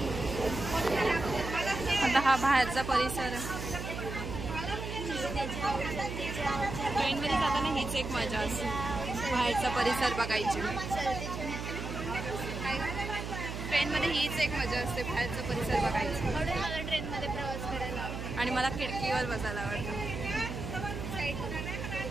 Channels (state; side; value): noise; right; hum, 6 dB below the sound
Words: आता हा बाहेरचा परिसर. ट्रेनमध्ये जाताना हीच एक मजा असते, बाहेरचा परिसर बघायची. ट्रेनमध्ये हीच एक मजा असते, बाहेरचा परिसर बघायची. म्हणून मला ट्रेनमध्ये प्रवास करायला आवडतो. आणि मला खिडकीवर बसायला आवडतं.